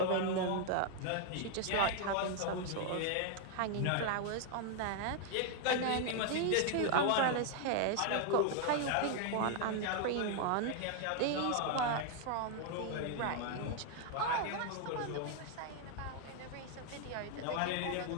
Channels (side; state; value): both; different; correlation 0.00